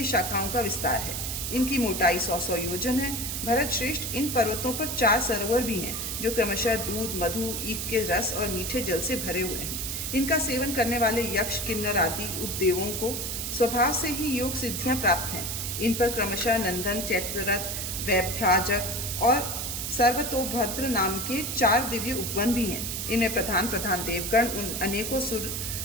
शाखाओं का विस्तार है। इनकी मोटाई 100 योजन है। भरत श्रेष्ठ, इन पर्वतों पर 4 सरोवर भी हैं, जो क्रमशः दूध, मधु, ईख के रस और मीठे जल से भरे हुए हैं। इनका सेवन करने वाले यक्ष, किन्नर आदि उपदेवों को स्वभाव से ही योग सिद्धियाँ प्राप्त हैं। इन पर क्रमशः नंदन, चैत्ररथ, वैभ्राजक और सर्वतोभद्र नाम के 4 दिव्य उपवन भी हैं। इनमें प्रधान देवगण उन अनेकों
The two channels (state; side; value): noise; right; hiss, 3 dB below the sound